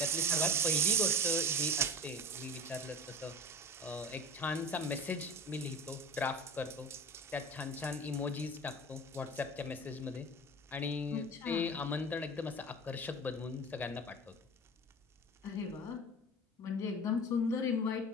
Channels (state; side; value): normal; both; correlation 0.33